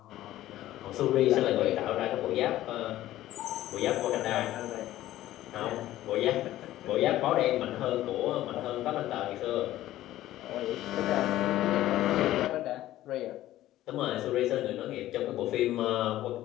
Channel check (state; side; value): quieter; right; 14.4 dB